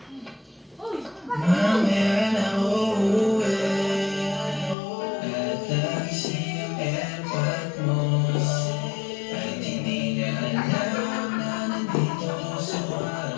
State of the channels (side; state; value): right; drops out; at 4.8 s